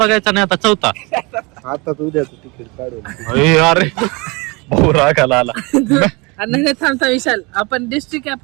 नाही आता चौथा आता तू उद्याचं तिकीट काढून अरे अरे भाऊ रागाला आला नाही थांबता विशाल आपण डिस्ट्रिक्ट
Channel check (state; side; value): quieter; left; 27.0 dB